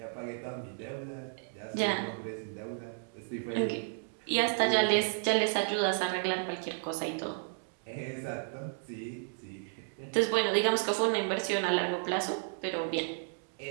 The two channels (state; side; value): silent; left; digital silence